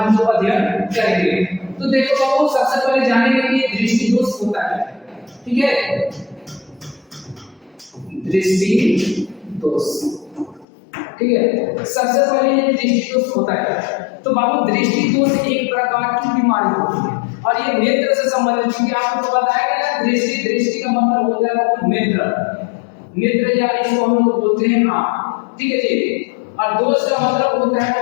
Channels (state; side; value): drops out; right; at 10.7 s